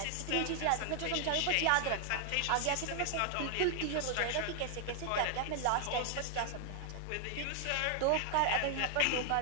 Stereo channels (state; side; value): different; both; correlation 0.00